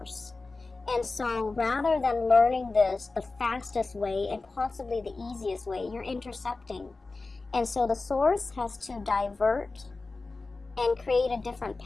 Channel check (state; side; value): quieter; right; 3.6 dB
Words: And so rather than learning this the fastest way and possibly the easiest way, you're intercepting. And so the source has to divert and create a different